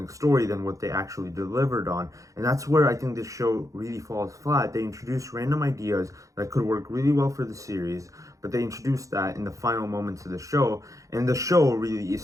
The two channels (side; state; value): left; late; 0.16 ms